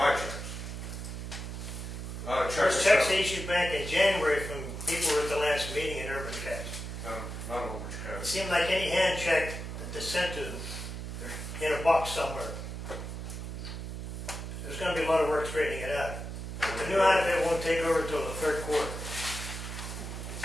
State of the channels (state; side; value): noise; right; hum, 7 dB below the sound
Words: my checks. Those checks they issued back in January from people who were at the last meeting in Urban Cash. None of them were cashed. It seemed like any hand check that they sent to them, they're in a box somewhere. There's going to be a lot of work straightening it out. The new outfit won't take over until the 3rd quarter.